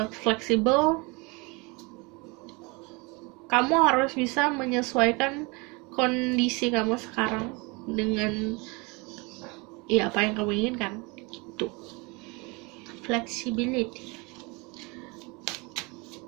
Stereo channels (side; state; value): left; quieter; 27.9 dB